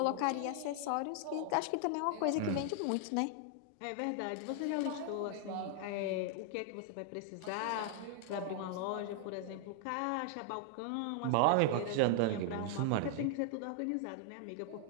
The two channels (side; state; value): both; different; correlation 0.00